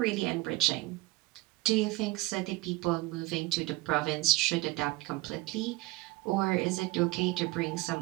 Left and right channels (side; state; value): left; quieter; 20.9 dB